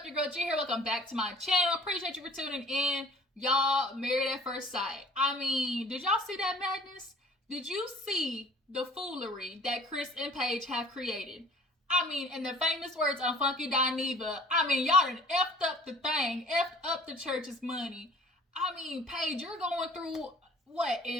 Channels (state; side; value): normal; both; correlation 0.50